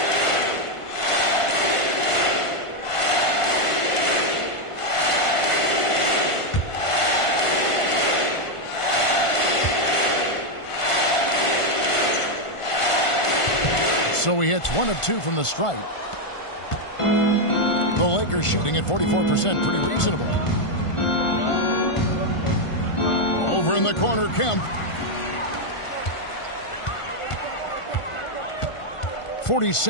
So he hits 1 of 2 from the stripe. The Lakers shooting at 44%, pretty reasonable. Over in the corner, Kemp.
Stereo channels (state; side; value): late; right; 1.5 ms